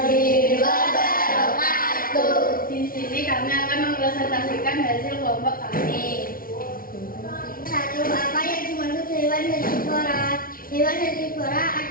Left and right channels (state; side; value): late; right; 0.42 ms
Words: wabarakatuh. Di sini kami akan mempresentasikan hasil kelompok kami. 1. Apa yang dimaksud hewan herbivora? Hewan herbivora